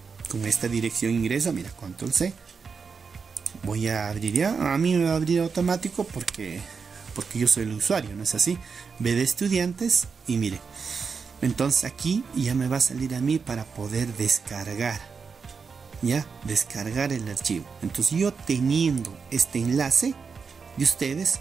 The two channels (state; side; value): quieter; left; 5.4 dB